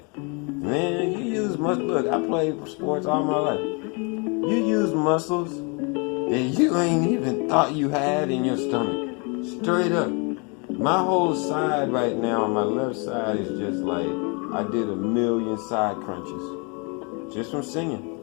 man, you use look, I played sports all my life. You use muscles that you ain't even thought you had in your stomach. Straight up. My whole side right now, my left side is just like, I did 1,000,000 side crunches. Just from singing.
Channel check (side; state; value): right; quieter; 33.0 dB